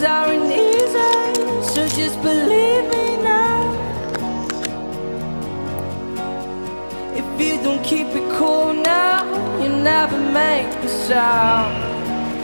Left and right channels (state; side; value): inverted; both; correlation -1.00